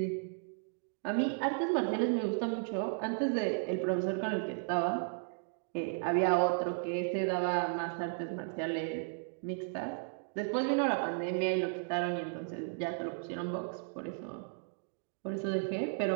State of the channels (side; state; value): left; silent; digital silence